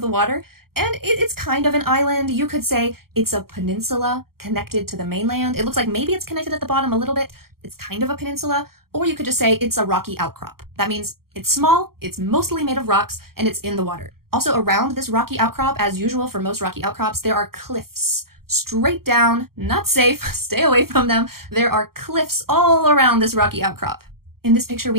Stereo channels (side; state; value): left; late; 0.94 ms